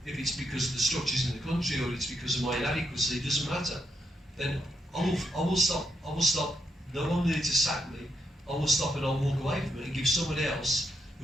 if it's because of the structures in the country or it's because of my inadequacy, it doesn't matter, then I will stop. I will stop. No one needs to sack me. I will stop and I'll walk away from it and give somebody else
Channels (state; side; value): normal; both; correlation 0.79